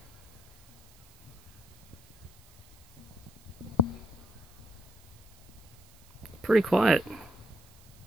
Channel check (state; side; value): noise; right; hiss, 24 dB below the sound